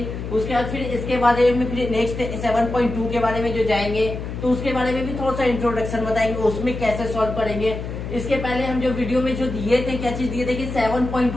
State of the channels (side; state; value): left; noise; hum, 7 dB below the sound